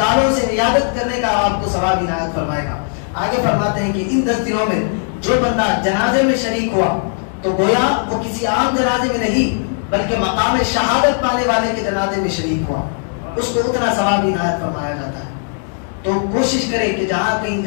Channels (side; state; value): right; silent; digital silence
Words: سے عیادت کرنے کا آپ کو ثواب عنایت فرمائے گا. آگے فرماتے ہیں کہ ان 10 دنوں میں جو بندہ جنازے میں شریک ہوا تو گویا وہ کسی عام جنازے میں نہیں بلکہ مقام شہادت پانے والے کے جنازے میں شریک ہوا، اس کو اتنا ثواب عنایت فرمایا جاتا ہے. تو کوشش کریں کہ جہاں کہیں